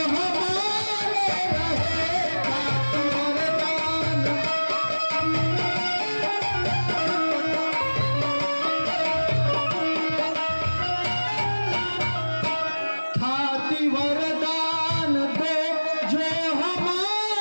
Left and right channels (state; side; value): inverted; both; correlation -1.00